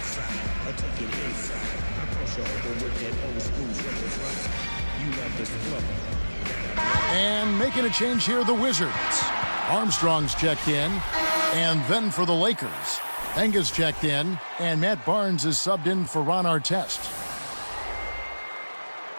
I take it inside. I cross you over with that old school triple fly. You love this flow. And making a change here, the Wizards. Armstrong's checked in. And then for the Lakers, Enga's checked in. And Matt Barnes is subbed in for Ron Artest.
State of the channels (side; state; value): both; inverted; correlation -1.00